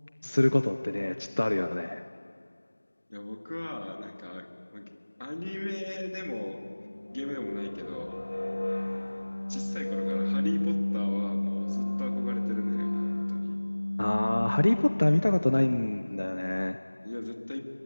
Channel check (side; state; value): both; inverted; correlation -1.00